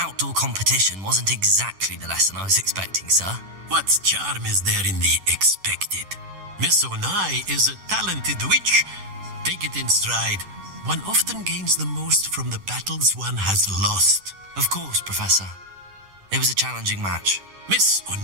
competition wasn't exactly the lesson I was expecting, sir. What charm is there in the expected? Miss Onai is a talented witch. Take it in stride. One often gains the most from the battles one has lost. Of course, Professor. It was a challenging match. Miss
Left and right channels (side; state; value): left; late; 10 ms